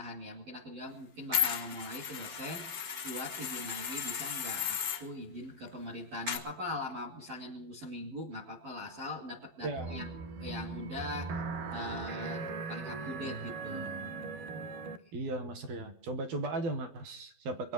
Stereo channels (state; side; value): late; left; 12 ms